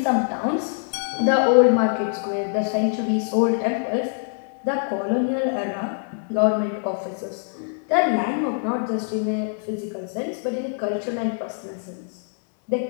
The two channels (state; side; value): silent; right; digital silence